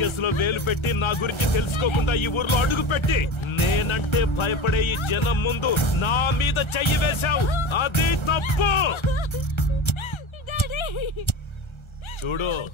వేలు పెట్టి నా గురించి తెలుసుకోకుండా ఈ ఊర్లో అడుగు పెట్టి నేనంటే భయపడే ఈ జనం ముందు నా మీద చెయ్యి వేశావు, అది తప్పు. చూడు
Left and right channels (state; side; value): late; right; 1.3 ms